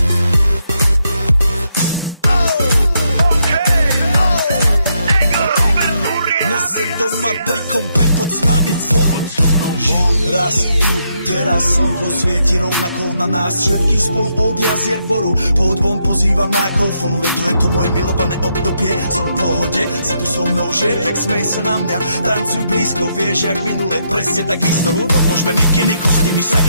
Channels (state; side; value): inverted; both; correlation -0.78